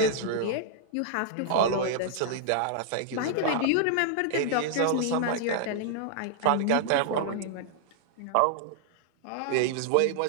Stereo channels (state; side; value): different; both; correlation -0.01